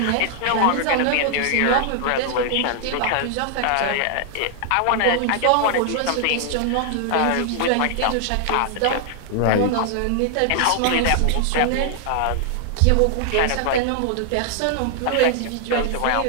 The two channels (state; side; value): different; both; correlation 0.00